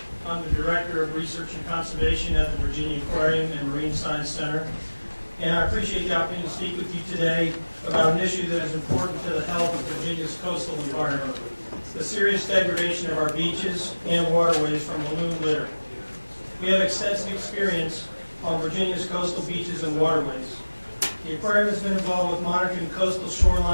I'm the Director of Research and Conservation at the Virginia Aquarium and Marine Science Center. And I appreciate the opportunity to speak with you today about an issue that is important to the health of Virginia's coastal environment, the serious degradation of our beaches and waterways from balloon litter. We have extensive experience on Virginia's coastal beaches and waterways. The aquarium has been involved with monitoring coastal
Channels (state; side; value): inverted; both; correlation -1.00